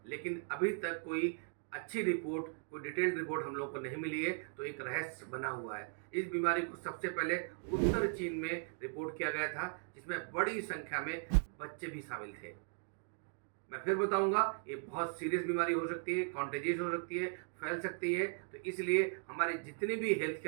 लेकिन अभी तक कोई अच्छी रिपोर्ट, कोई डिटेल्ड रिपोर्ट हम लोगों को नहीं मिली है, तो एक रहस्य बना हुआ है। इस बीमारी को सबसे पहले उत्तर चीन में रिपोर्ट किया गया था, जिसमें बड़ी संख्या में बच्चे भी शामिल थे। मैं फिर बताऊंगा, ये बहुत सीरियस बीमारी हो सकती है, कॉन्टेजियस हो सकती है, फैल सकती है। तो इसलिए हमारे जितने भी हेल्थ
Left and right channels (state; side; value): silent; left; 52 dB below the other